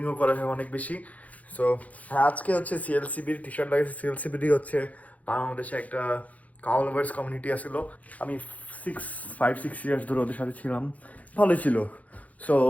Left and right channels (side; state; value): right; late; 0.071 ms